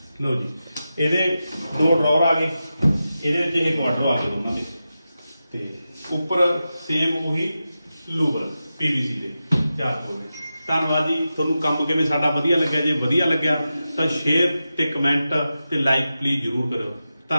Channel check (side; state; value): both; inverted; correlation -0.92